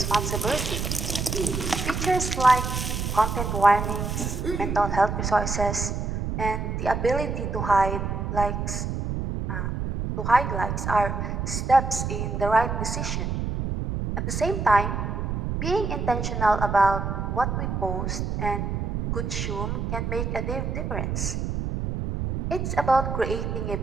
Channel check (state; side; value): noise; right; rumble, 2 dB below the sound